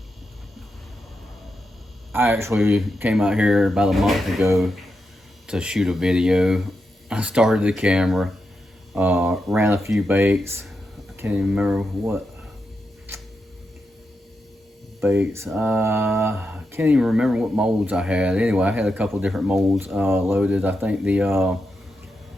I actually came out here about a month ago to shoot a video. I started the camera, ran a few baits. I can't even remember what baits. I can't even remember what molds I had. Anyway, I had a couple different molds loaded. I think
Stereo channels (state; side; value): normal; both; correlation 0.87